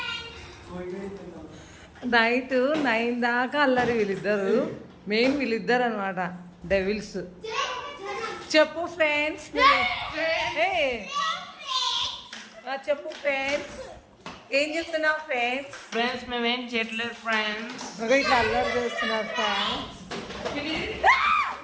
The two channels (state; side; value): identical; both; correlation 1.00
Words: 9 దాకా అల్లరి. వీళ్ళిద్దరు మెయిన్ వీళ్ళిద్దరు అనమాట, డెవిల్స్. చెప్పు ఫ్రెండ్స్, చెప్పు ఫ్రెండ్స్, ఏం చెప్తున్నావు ఫ్రెండ్స్? ఫ్రెండ్స్ మేమేం చేయట్లేదు ఫ్రెండ్స్. ఇట్లా అల్లరి చేస్తున్నారు ఫ్రెండ్స్.